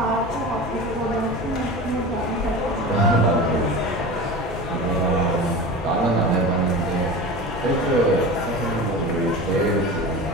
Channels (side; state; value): both; normal; correlation 0.31